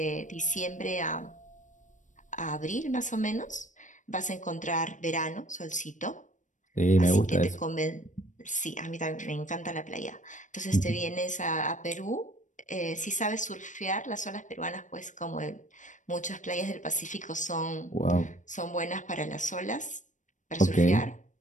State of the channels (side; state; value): right; late; 0.36 ms